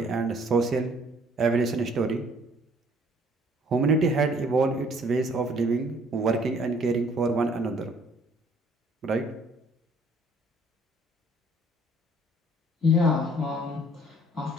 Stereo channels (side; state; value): both; normal; correlation 0.60